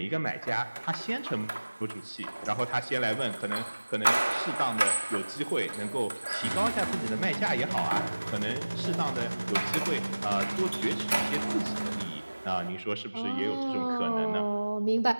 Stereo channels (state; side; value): inverted; both; correlation -1.00